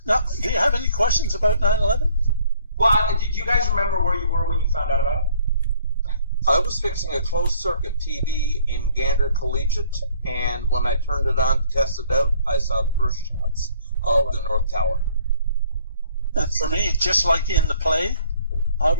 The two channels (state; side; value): inverted; both; correlation -0.59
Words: Now, do you have any questions about 9/11? Well, do you guys remember where you were when you found out about it? I was fixing a closed circuit TV in Gander Collegiate, and when I turned it on to test it out, I saw the first shots of the North Tower. And for me, just like in the play, I